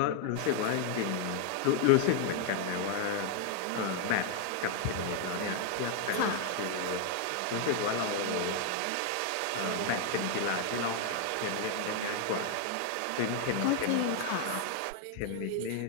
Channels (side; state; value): both; different; correlation 0.00